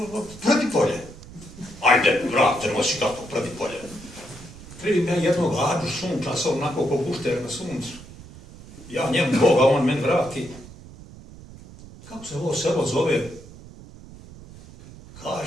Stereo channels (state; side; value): noise; right; rumble, 18 dB below the sound